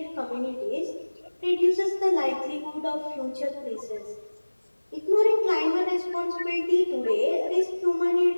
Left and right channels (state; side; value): inverted; both; correlation -1.00